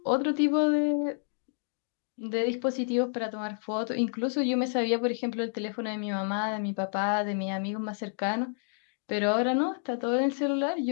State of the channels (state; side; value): silent; right; 58 dB below the other